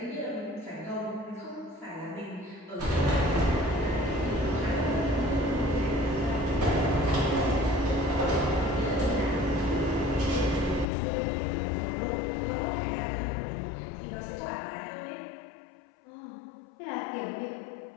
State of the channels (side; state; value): right; drops out; at 10.9 s